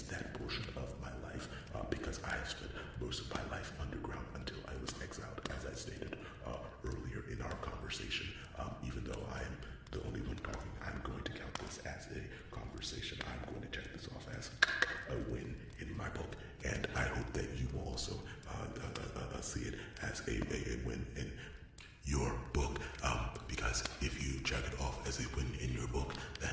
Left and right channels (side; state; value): both; identical; correlation 1.00